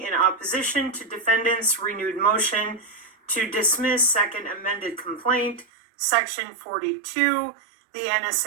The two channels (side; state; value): left; drops out; at 5.7 s